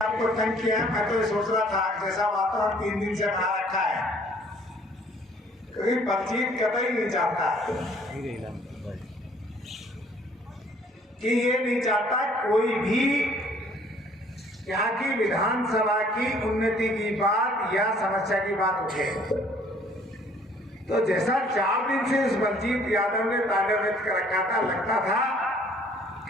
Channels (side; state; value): both; normal; correlation 0.58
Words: तंग किया है, मैं तो ये सोच रहा था जैसा वातावरण 3 दिन से बना रखा है, कभी बातचीत कतई नहीं चाहता कि ये नहीं चाहता कोई भी यहाँ की विधानसभा की उन्नति की बात या समस्या की बात उठे। तो जैसा 4 दिन से इस बलजीत यादव ने ताले व्यक्त कर रखा था, लगता था